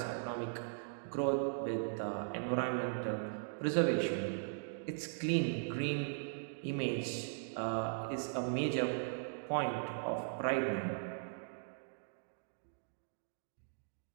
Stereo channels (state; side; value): silent; left; digital silence